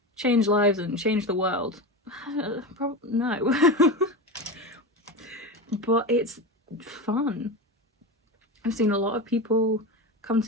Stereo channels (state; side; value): normal; both; correlation 0.22